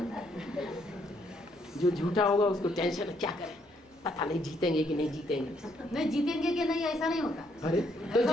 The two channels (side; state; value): both; normal; correlation 0.71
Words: जो झूठा होगा उसको टेंशन, क्या करें पता नहीं जीतेंगे कि नहीं जीतेंगे। नहीं जीतेंगे कि नहीं ऐसा नहीं होता। अरे